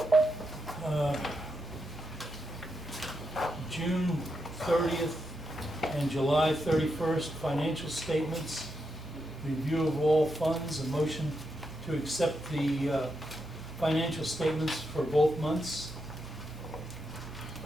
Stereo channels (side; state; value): both; normal; correlation 0.84